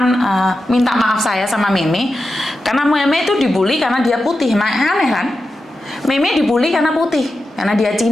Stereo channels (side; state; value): both; normal; correlation 0.90